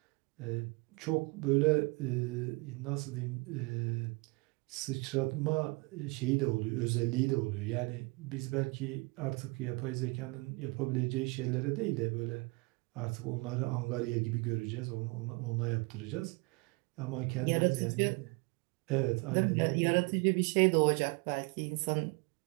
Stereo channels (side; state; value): left; quieter; 28.3 dB